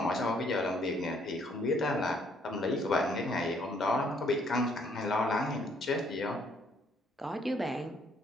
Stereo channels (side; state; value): both; normal; correlation 0.66